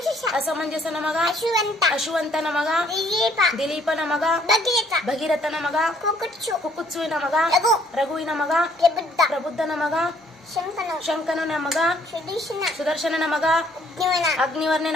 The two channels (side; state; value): both; normal; correlation 0.63